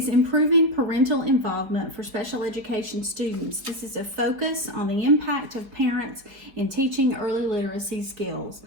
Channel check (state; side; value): late; left; 4.8 ms